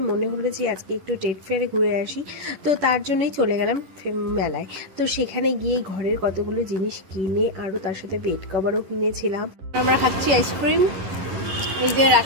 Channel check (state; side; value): late; left; 10 ms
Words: মনে হলো যে আজকে একটু ট্রেড ফেয়ারে ঘুরে আসি, তো তার জন্যই চলে গেলাম মেলায়। তো সেখানে গিয়ে ঘরের কতগুলো জিনিস কিনে আরও তার সাথে বেড কভারও কিনেছিলাম। আমরা খাচ্ছি আইসক্রিম, এই যে